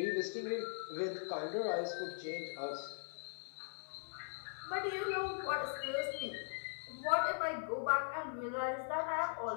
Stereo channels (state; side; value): silent; right; 51 dB below the other